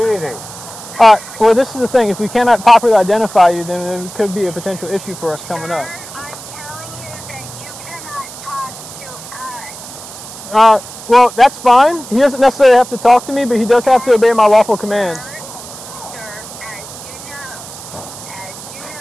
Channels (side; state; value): right; noise; hiss, 14 dB below the sound